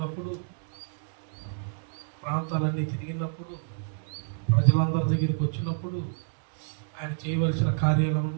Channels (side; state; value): left; silent; digital silence